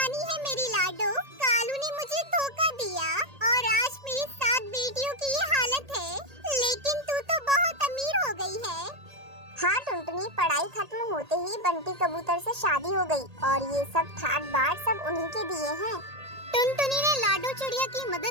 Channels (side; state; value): left; late; 1.8 ms